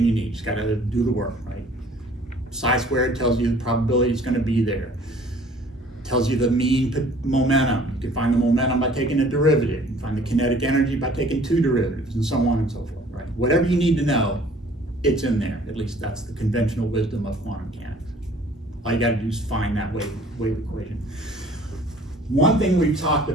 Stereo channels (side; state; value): both; normal; correlation 0.53